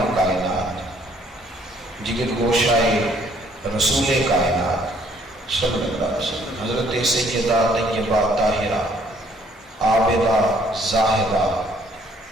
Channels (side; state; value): both; normal; correlation 0.63